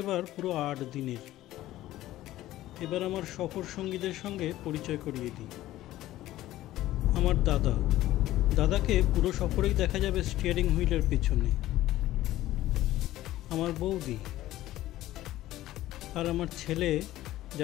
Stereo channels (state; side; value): quieter; right; 15.1 dB